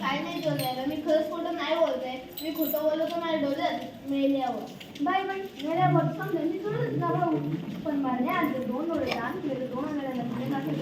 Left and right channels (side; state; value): both; identical; correlation 1.00